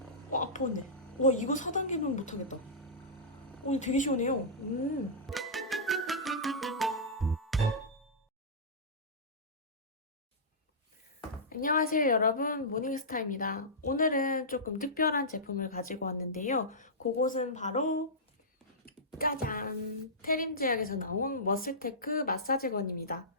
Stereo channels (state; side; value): normal; both; correlation -0.16